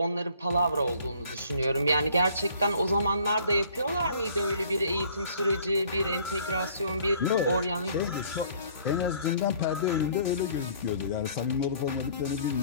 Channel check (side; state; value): both; inverted; correlation -0.56